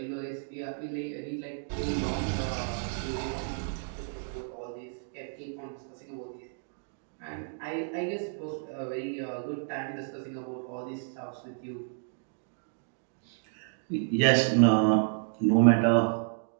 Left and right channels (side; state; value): left; silent; digital silence